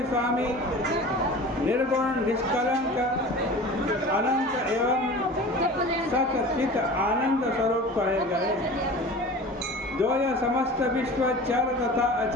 स्वामी, निर्गुण, निष्कलंक, अनंत एवं सचित आनंद स्वरूप कहे गए, जो यह समस्त विश्व चर तथा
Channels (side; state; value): both; normal; correlation 0.38